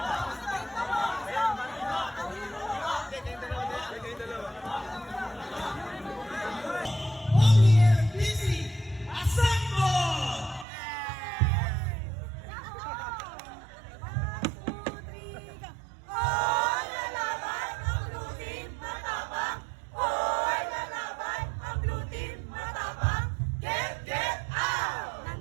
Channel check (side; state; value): left; drops out; at 10.7 s